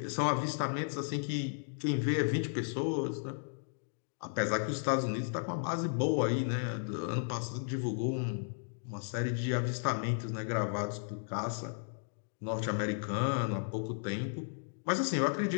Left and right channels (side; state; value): right; silent; digital silence